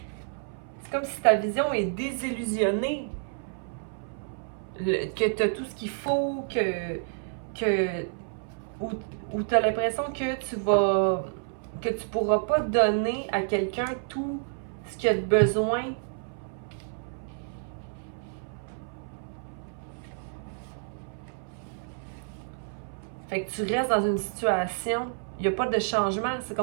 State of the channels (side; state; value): left; silent; 58 dB below the other